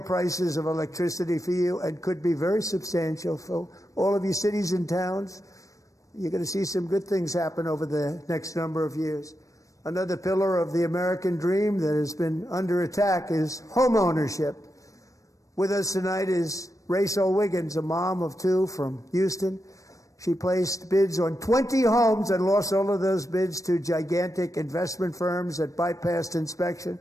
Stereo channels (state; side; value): late; right; 0.16 ms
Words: prices of electricity for you, and could be very substantial for all of you cities and towns. You're going to see some good things happen over the next number of years. Another pillar of the American dream that has been under attack is home ownership. With us tonight is Rachel Wiggins, a mom of two from Houston. She placed bids on 20 homes and lost all of those bids to gigantic investment firms that bypassed inspection,